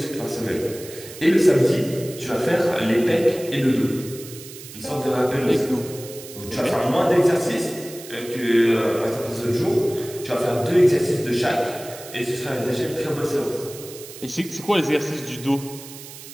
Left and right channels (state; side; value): noise; right; hiss, 15 dB below the sound